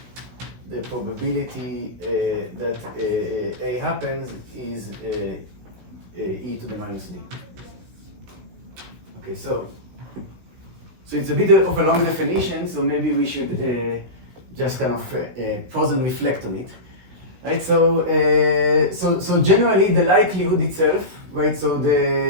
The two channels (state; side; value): late; left; 16 ms